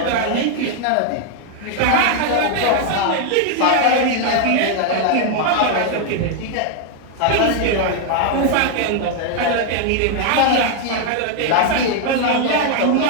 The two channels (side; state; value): both; different; correlation 0.00